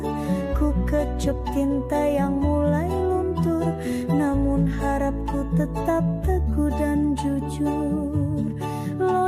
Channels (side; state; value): both; identical; correlation 1.00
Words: Ku kecup tinta yang mulai luntur, namun harapku tetap teguh dan jujur.